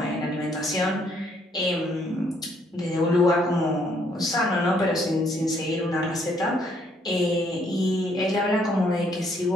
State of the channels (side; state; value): both; normal; correlation 0.68